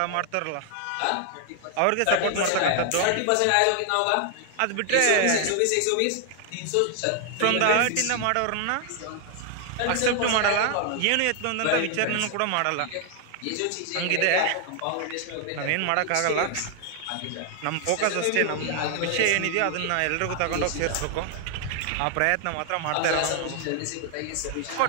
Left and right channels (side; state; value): both; different; correlation 0.00